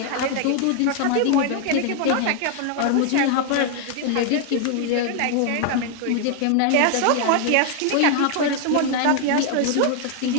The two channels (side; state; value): both; different; correlation 0.00